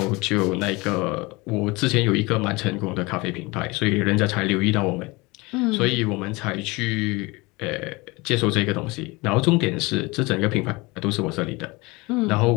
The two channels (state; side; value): quieter; right; 24.3 dB